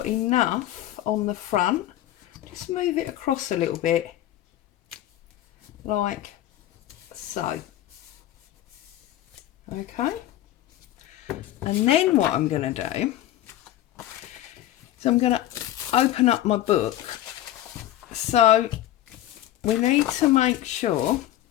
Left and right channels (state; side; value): quieter; right; 13.4 dB